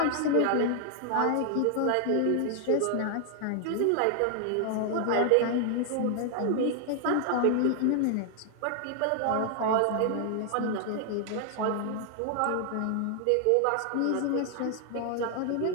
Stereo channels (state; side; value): different; both; correlation 0.00